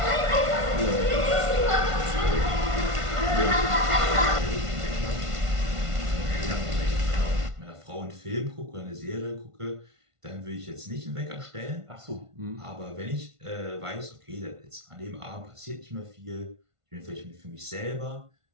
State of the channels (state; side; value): late; left; 1.5 ms